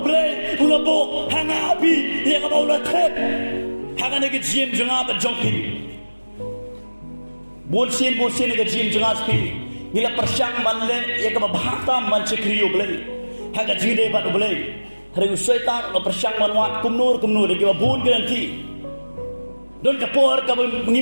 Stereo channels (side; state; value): both; inverted; correlation -1.00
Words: ulabo hanga api yang ke bau la trep hanga ne ke jim janga ba jongpi bolsin ne ke jim janga spi nila persyang manle yang ke bahata man cekriyo ble hanga jide ba ble hari usaitan lo persyang manwat kumnur de ke bun ke nanti don ke por ke